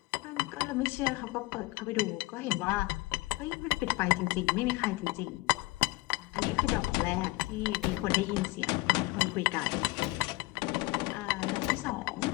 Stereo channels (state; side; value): quieter; right; 21.8 dB